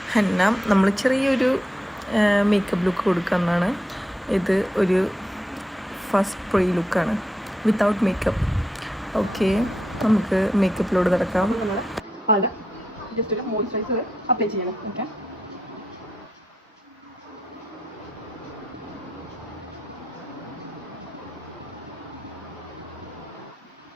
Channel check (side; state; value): both; normal; correlation 0.82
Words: ഹന്ന. നമ്മൾ ചെറിയൊരു മേക്കപ്പ് ലുക്ക് കൊടുക്കുന്നതാണ്. ഇത് ഒരു ഫസ്റ്റ് പ്രീ ലുക്കാണ്, വിത്തൗട്ട് മേക്കപ്പ്. ഓക്കെ, നമുക്ക് മേക്കപ്പിലോട് നടക്കാം. ജസ്റ്റ് ഒരു മോയ്സ്ചറൈസർ അപ്ലൈ ചെയ്യണം. ഓക്കെ,